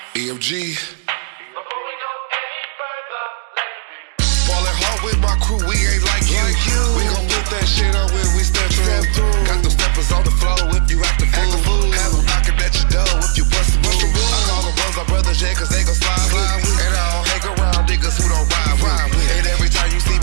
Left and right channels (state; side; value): silent; left; digital silence